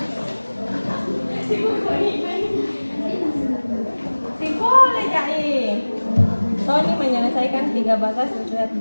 Boleh jadi. Tony menyelesaikan 3 batas setiap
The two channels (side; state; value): both; inverted; correlation -1.00